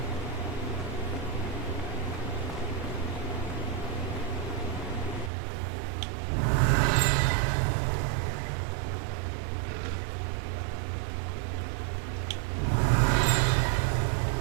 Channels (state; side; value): drops out; left; at 5.3 s